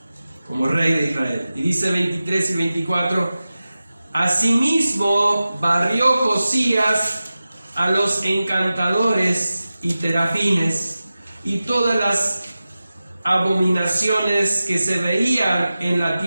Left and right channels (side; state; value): both; inverted; correlation -0.95